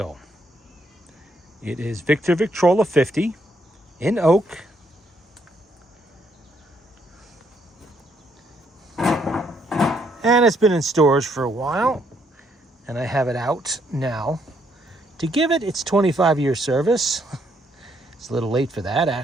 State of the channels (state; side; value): normal; both; correlation 0.72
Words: It is Victrola 50 in oak. And it's been in storage for a while, and I have it out now to give it its 25-year service. It's a little late for that,